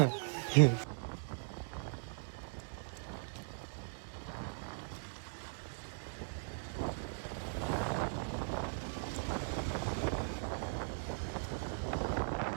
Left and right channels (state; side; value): silent; left; digital silence